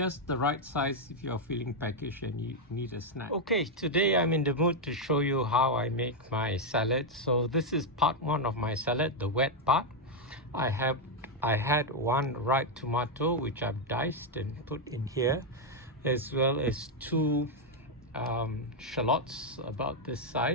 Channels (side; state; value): both; normal; correlation 0.01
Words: the right size if you're feeling peckish and you need a snack. Okay, today I'm in the mood to show you how I make my salad. So this is part one of my salad, the wet part. I had one ripe tomato which I've diced and put in here, as well as two shallots about this